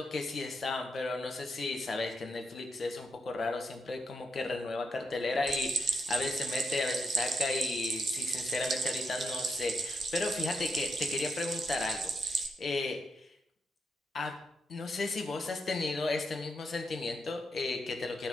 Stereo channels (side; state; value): both; normal; correlation 0.82